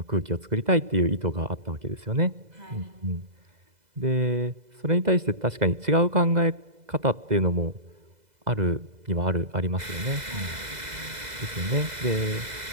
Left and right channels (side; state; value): left; late; 2.0 ms